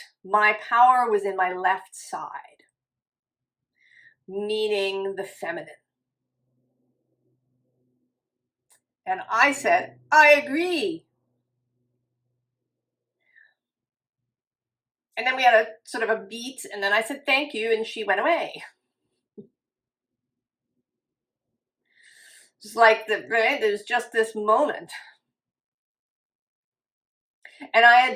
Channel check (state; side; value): identical; both; correlation 1.00